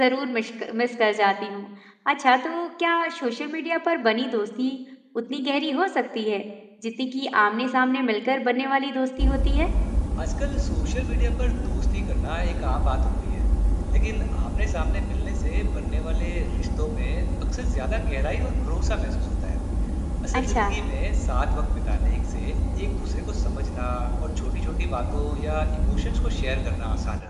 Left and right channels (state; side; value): identical; both; correlation 1.00